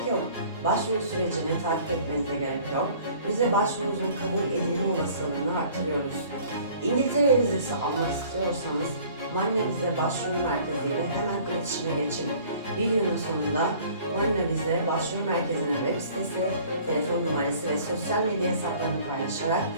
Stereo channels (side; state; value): both; inverted; correlation -0.52